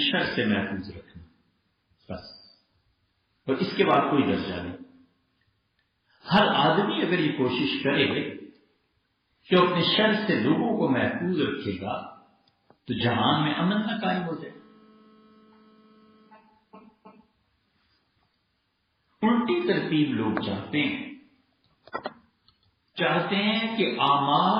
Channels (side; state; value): both; identical; correlation 1.00